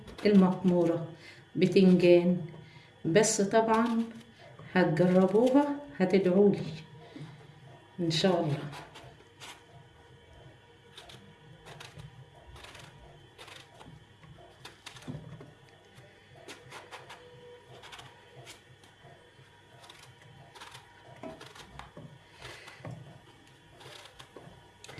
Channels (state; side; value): identical; both; correlation 1.00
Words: المقموره بتنجان. بس طبعا هتجربوها هتدعولي ان شاء الله.